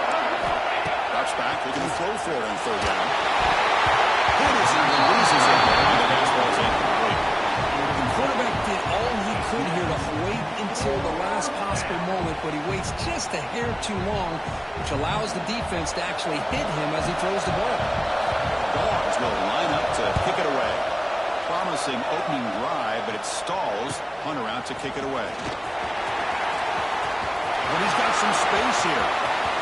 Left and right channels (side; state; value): both; identical; correlation 1.00